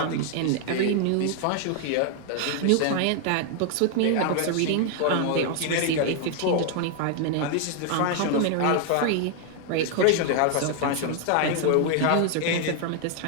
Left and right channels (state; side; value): different; both; correlation 0.00